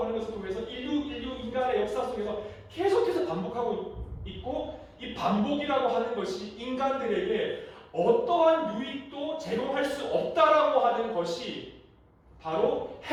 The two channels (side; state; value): both; identical; correlation 1.00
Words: 하는 것을 통해서 인류 인간의 역사 속에서 계속해서 반복하고 있고, 이 반복이라고 하는 것이 인간들에게 어떠한 유익도 제공할 수 없다라고 하는 것이 바로